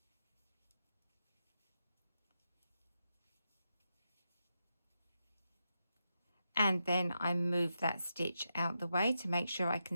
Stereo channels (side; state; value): both; inverted; correlation -0.86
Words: And then I move that stitch out the way to make sure I